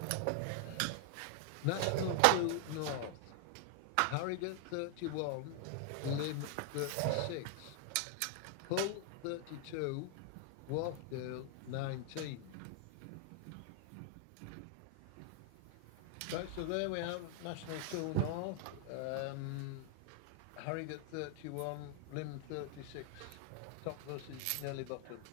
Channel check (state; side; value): different; both; correlation 0.00